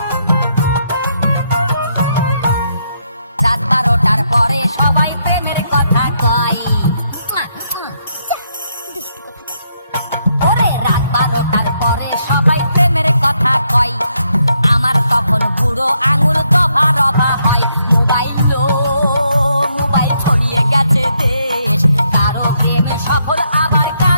রাত 12টার পরে সবাই প্রেমের কথা কয়। ওরে রাত 12টার পরে সবাই প্রেমের কথা কয়, আমার তখন বুড়ো আঙুল দফা রফা হয়। মোবাইল মোবাইল ছড়িয়ে গেছে দেশ, কারো প্রেমে সফল আবার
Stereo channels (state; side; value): inverted; both; correlation -0.76